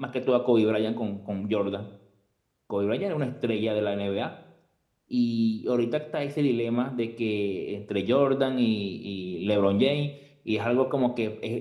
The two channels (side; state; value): both; identical; correlation 1.00